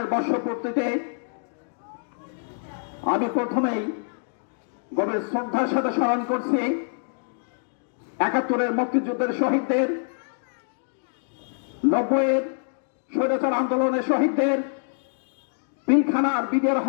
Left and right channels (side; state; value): right; silent; digital silence